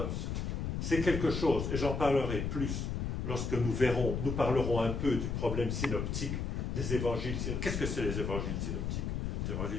C'est quelque chose, et j'en parlerai plus lorsque nous parlerons un peu du problème synoptique des évangiles. Qu'est-ce que c'est les évangiles synoptiques? Les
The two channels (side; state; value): left; noise; rumble, 2 dB below the sound